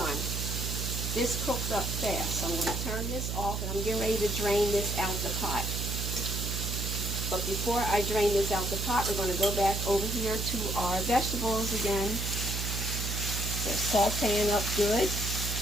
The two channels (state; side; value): noise; right; hum, 3 dB below the sound